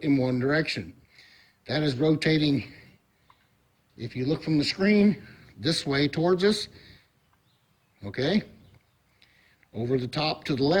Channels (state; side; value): identical; both; correlation 1.00